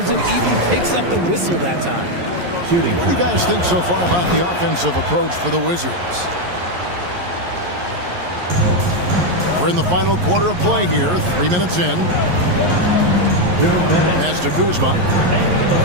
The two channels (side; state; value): left; late; 11 ms